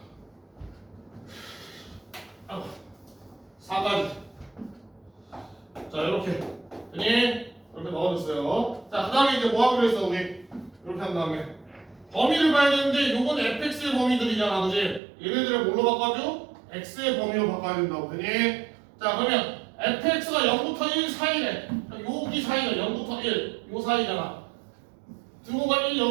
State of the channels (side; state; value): left; drops out; at 15.0 s